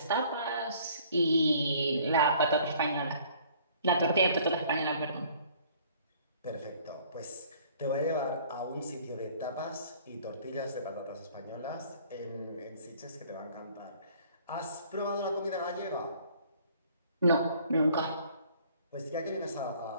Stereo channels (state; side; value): inverted; both; correlation -0.55